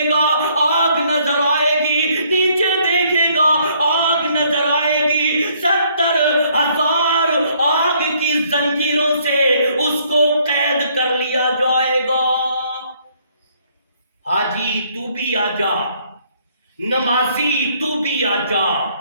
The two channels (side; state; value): both; inverted; correlation -0.65